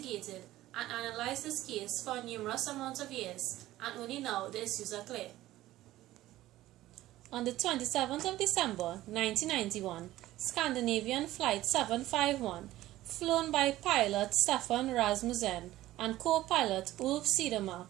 and analyzed this case for a numerous amount of years, and only now the issues are clear. On the 27th of December 1991, Scandinavian Flight 751, flown by pilot Stefan Rasmussen and co-pilot Ulf Cedermark,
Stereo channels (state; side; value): quieter; left; 15.5 dB